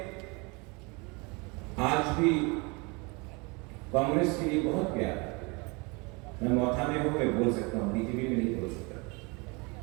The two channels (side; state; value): left; quieter; 28.6 dB